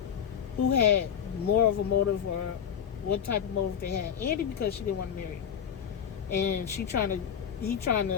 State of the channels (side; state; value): right; quieter; 8.3 dB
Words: who had more of a motive or what type of motive they had? Andy, because she didn't want to marry him. And he trying